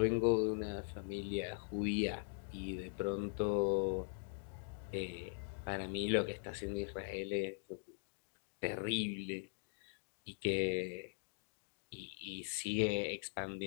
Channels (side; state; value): right; silent; digital silence